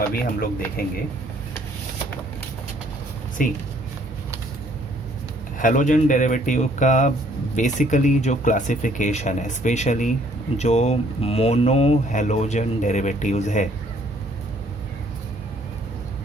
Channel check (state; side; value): normal; both; correlation 0.63